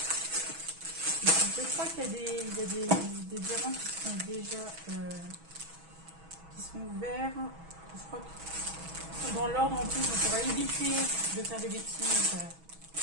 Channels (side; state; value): left; late; 6.2 ms